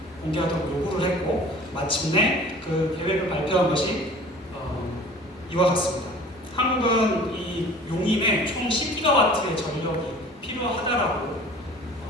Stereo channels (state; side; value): normal; both; correlation 0.45